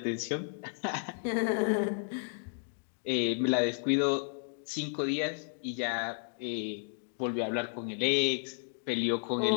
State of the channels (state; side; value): silent; right; 56 dB below the other